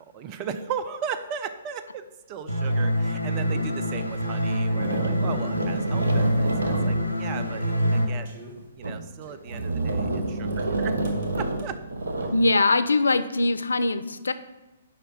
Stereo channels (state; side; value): inverted; both; correlation -0.77